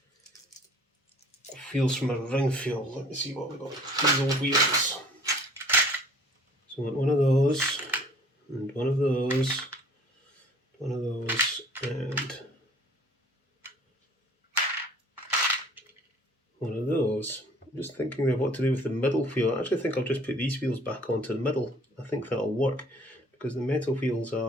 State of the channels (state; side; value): normal; both; correlation 0.53